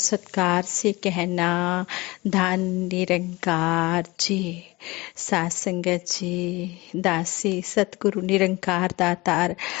से कहना धन निरंकार जी। सात संगत जी, दासी सतगुरु निरंकार दातार,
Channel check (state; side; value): quieter; right; 22.1 dB